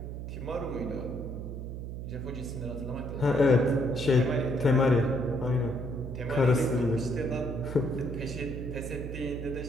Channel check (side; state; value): right; noise; hum, 7 dB below the sound